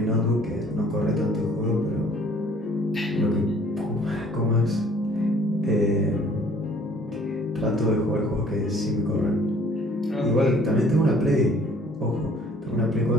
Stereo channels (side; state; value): both; normal; correlation 0.56